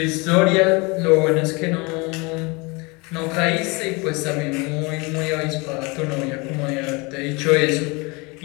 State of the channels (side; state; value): right; quieter; 27.4 dB